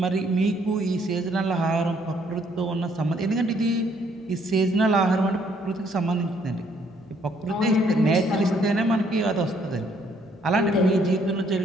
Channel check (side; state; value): left; noise; hum, 29 dB below the sound